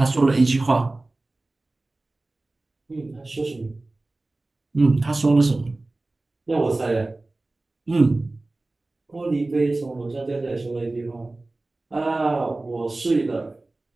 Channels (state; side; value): quieter; left; 3.0 dB